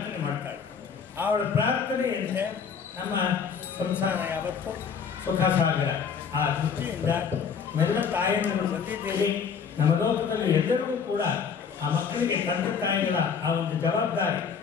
ಮಾಡ್ತಾಳೆ. ಅವಳ ಪ್ರಾರ್ಥನೆಯಂತೆ ನಮ್ಮ ಸಂಸಾರ ಯಾವತ್ತು ಸುಖ ಸಾಗರ. ಆ ದೃಷ್ಟಿಯಿಂದ ಮೆಲ್ಲ ತಾಯಿಯನ್ನು ಬಂದಿದ್ದೀರಿ. ನಮ್ಮ ಲೋಕದಲ್ಲಿ ಎಲ್ಲರಿಗೂ ಕೂಡ ಆ ಮಕ್ಕಳಿಗೆ ತಂದೆ ತಾಯಿಗಳ ಆ ಒಂದು ಜವಾಬ್ದಾರಿ,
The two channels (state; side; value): quieter; right; 6.5 dB